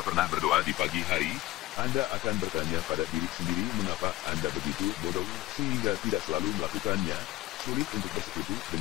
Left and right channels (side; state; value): right; quieter; 15.1 dB